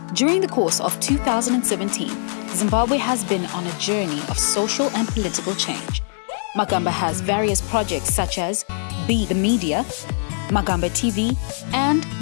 During the course of 2017, Zimbabwe has been on a journey of social and political change. Magamba has various projects such as Be the Media, Magamba TV, and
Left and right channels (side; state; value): right; silent; digital silence